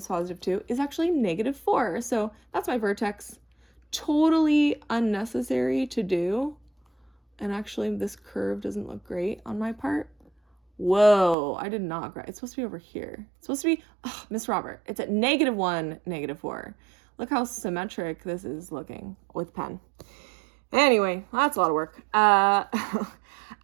+2 is actually -4. So that's my vertex. Totally unnecessary to do. And actually, this curve doesn't look great on my part. Whoa, I did not grab. It's supposed to be over here. It's supposed to be, Miss Robert, it's at -1, -4. Look how symmetric this is looking with pen. Anyway, that's a lot of work.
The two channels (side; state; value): left; drops out; at 11.4 s